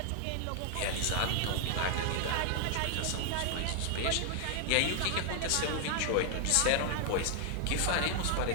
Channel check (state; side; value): different; both; correlation 0.00